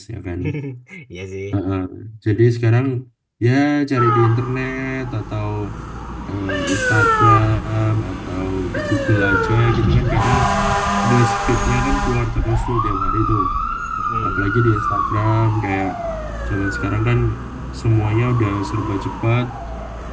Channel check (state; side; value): identical; both; correlation 1.00